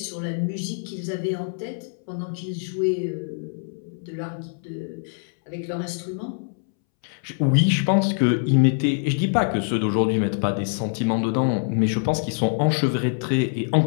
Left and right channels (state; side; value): silent; right; 62 dB below the other